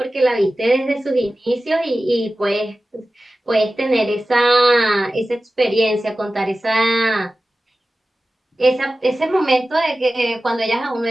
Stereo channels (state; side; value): normal; both; correlation 0.95